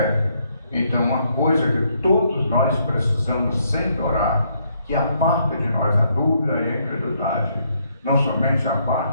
Então, uma coisa que todos nós precisamos sempre orar, que aparta de nós a dúvida e a incredulidade, não somente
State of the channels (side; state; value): both; inverted; correlation -0.72